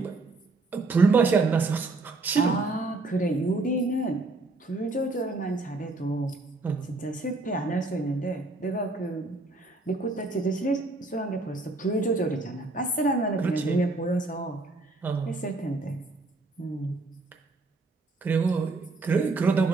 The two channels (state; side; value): quieter; left; 3.4 dB